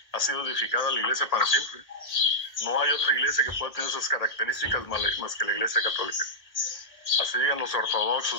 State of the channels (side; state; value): right; late; 1.8 ms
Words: ha sido edificada la iglesia para siempre. No hay otra iglesia que pueda tener esas características más que la iglesia católica. Así digan los